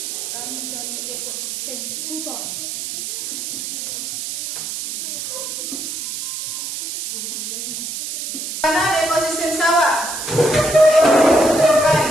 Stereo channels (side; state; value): right; noise; hiss, 5 dB below the sound